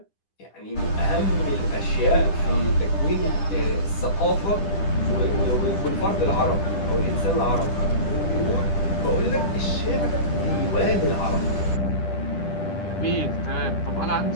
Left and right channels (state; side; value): late; right; 10 ms